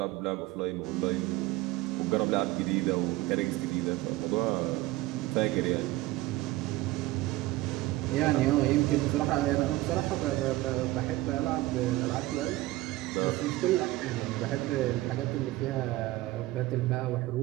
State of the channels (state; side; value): quieter; left; 18.1 dB